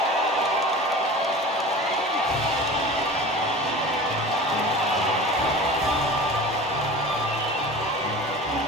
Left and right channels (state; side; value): normal; both; correlation 0.36